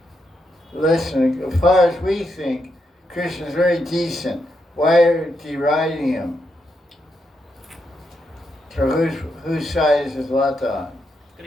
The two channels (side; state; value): both; normal; correlation 0.82